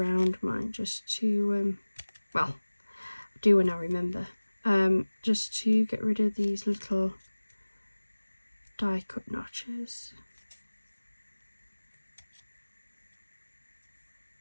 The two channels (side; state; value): both; inverted; correlation -1.00